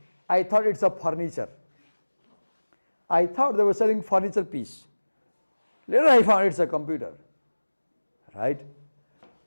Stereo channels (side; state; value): both; inverted; correlation -1.00